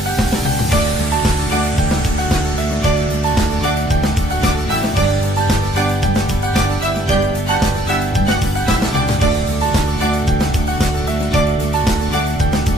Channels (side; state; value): both; normal; correlation 0.64